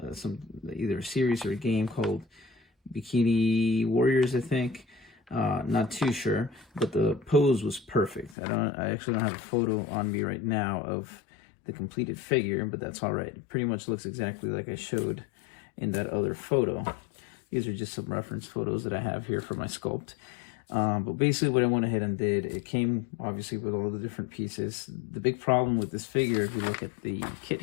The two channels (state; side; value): drops out; right; at 8.3 s